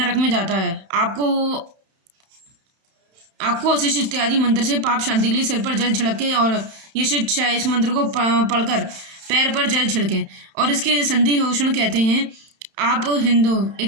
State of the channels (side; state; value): left; late; 31 ms